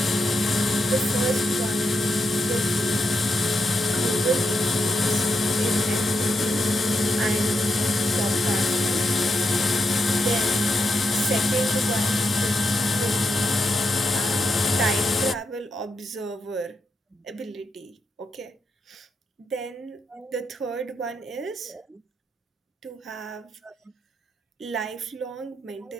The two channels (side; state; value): both; normal; correlation 0.84